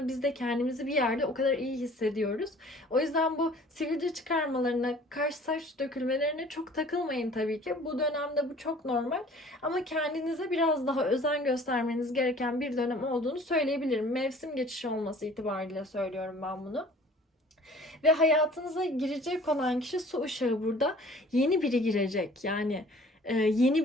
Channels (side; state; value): both; normal; correlation 0.50